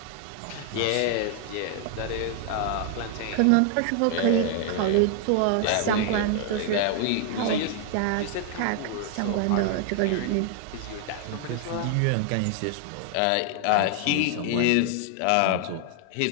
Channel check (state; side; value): different; both; correlation 0.00